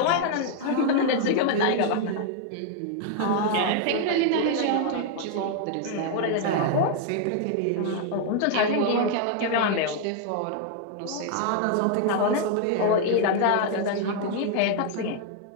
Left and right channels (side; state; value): both; different; correlation 0.00